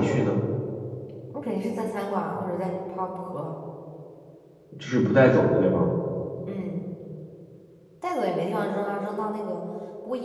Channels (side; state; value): both; identical; correlation 1.00